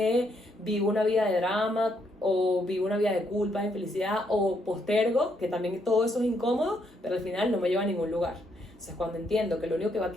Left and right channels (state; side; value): normal; both; correlation 0.74